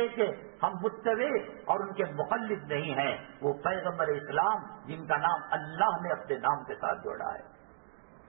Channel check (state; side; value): silent; left; digital silence